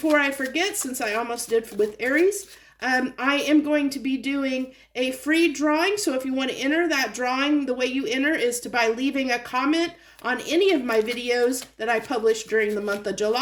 I forget, since I almost did with Aries, I am going to be doing a free drawing. So if you want to enter that drawing, the way you enter is by leaving a comment on any of my videos that I publish during the month of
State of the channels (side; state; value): both; identical; correlation 1.00